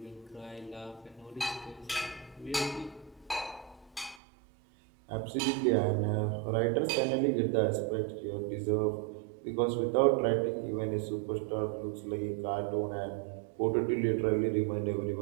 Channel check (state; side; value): drops out; left; at 4.2 s